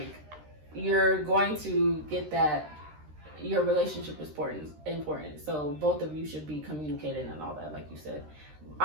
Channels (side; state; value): left; late; 13 ms